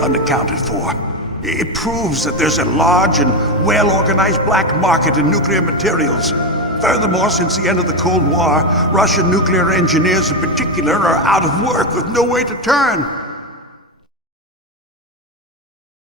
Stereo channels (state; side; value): normal; both; correlation 0.12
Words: unaccounted for. It proves that there's a large and well-organized black market in nuclear materials. Furthermore, since the end of the Cold War, Russian nuclear engineers in particular are out of work with no way to turn.